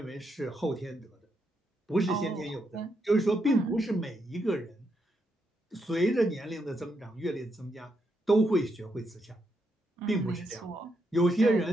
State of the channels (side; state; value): both; normal; correlation 0.80